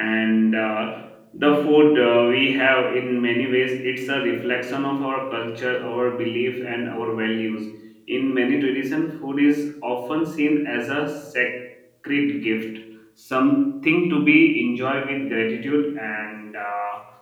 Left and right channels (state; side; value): identical; both; correlation 1.00